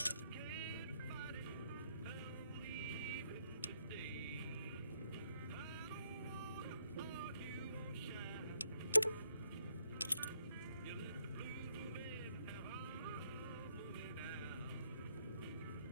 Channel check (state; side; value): inverted; both; correlation -0.75